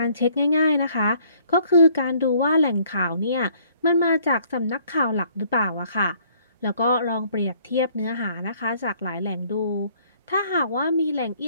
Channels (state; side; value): inverted; both; correlation -0.61